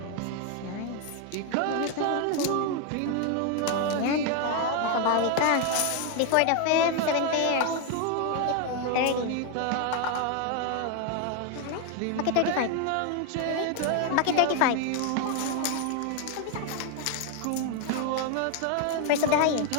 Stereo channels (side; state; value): both; different; correlation 0.01